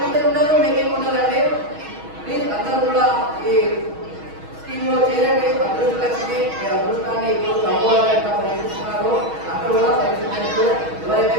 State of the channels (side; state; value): left; late; 6.3 ms